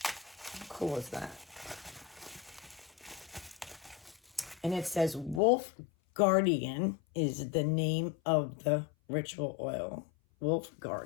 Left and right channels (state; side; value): drops out; right; at 5.4 s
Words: How cool is that? And it says Wolf Guardian is the name of the ritual oil. Wolf